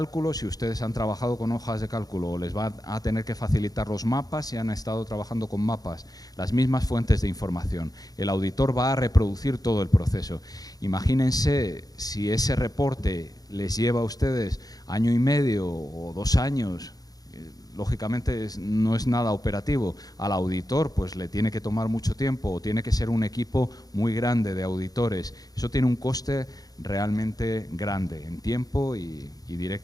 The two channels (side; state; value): right; late; 0.18 ms